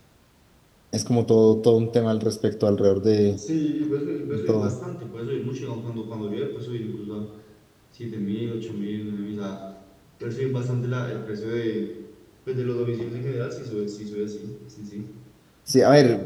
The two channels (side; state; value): both; identical; correlation 1.00